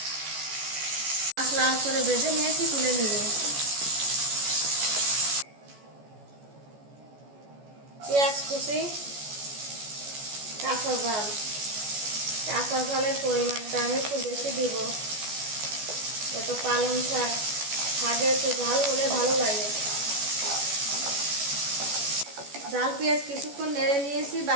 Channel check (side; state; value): left; late; 14 ms